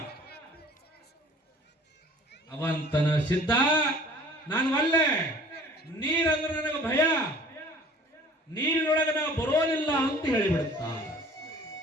ಅವಂತನ ಸಿದ್ಧ, ನಾನು ಒಲ್ಲೆ, ನೀರಂದ್ರೆ ನನಗೆ ಭಯ, ನೀರಿನೊಳಗೆ ನಾವು ಬರೋದಿಲ್ಲ ಅಂತ ಹೇಳಿಬಿಡುತ್ತ.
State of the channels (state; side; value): normal; both; correlation 0.49